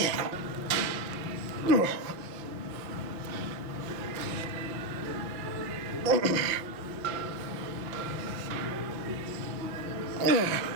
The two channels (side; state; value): left; late; 5.7 ms